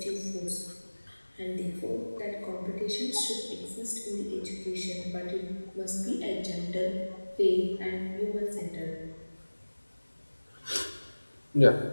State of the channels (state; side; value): inverted; both; correlation -1.00